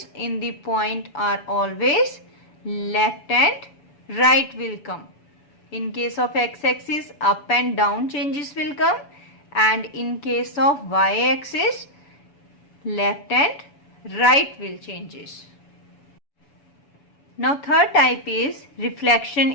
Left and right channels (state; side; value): late; right; 7.0 ms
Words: in the point are always left and right will come. In case of x-axis, up and down changes will come, and in case of y-axis, left and right will changes. Now third type is reflection